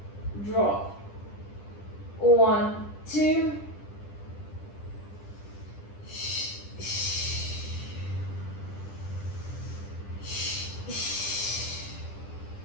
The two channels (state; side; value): late; right; 10 ms